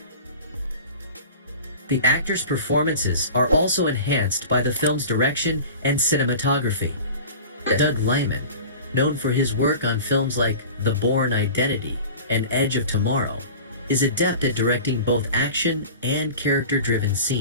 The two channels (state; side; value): inverted; both; correlation -0.38